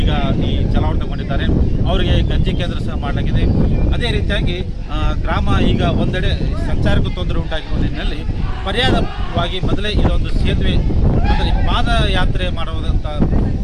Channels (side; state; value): both; identical; correlation 1.00